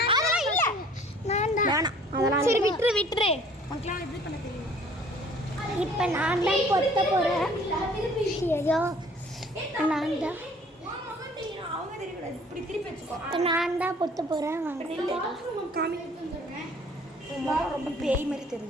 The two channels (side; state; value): both; normal; correlation 0.54